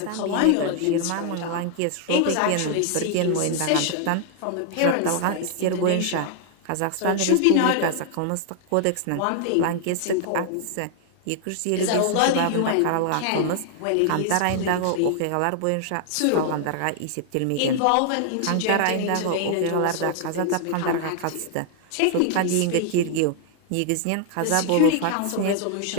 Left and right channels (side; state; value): both; different; correlation 0.00